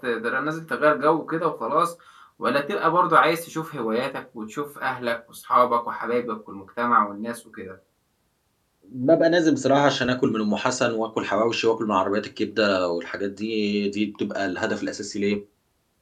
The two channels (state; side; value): identical; both; correlation 1.00